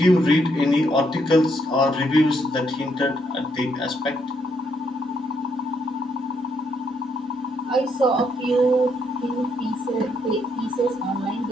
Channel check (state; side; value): normal; both; correlation 0.74